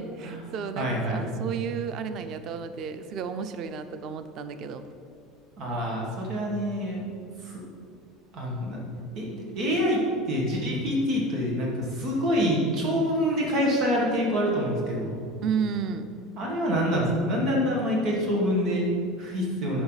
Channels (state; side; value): normal; both; correlation 0.33